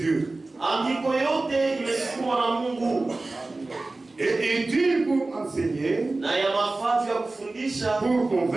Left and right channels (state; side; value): quieter; left; 3.2 dB